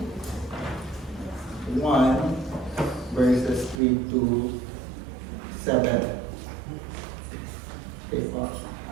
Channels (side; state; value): left; drops out; at 3.8 s